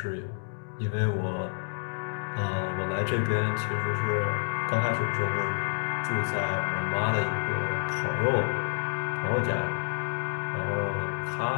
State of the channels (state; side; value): silent; right; digital silence